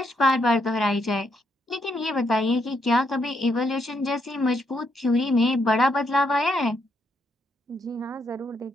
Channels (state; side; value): normal; both; correlation 0.76